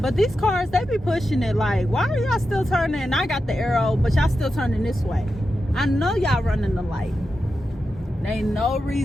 But these cars, they be pushing it like, why are y'all still turning? And I got the arrow, but y'all still turning this way. I know y'all running the light. There ain't no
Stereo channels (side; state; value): both; normal; correlation 0.89